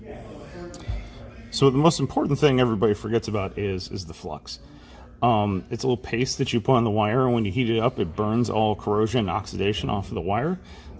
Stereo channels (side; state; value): both; identical; correlation 1.00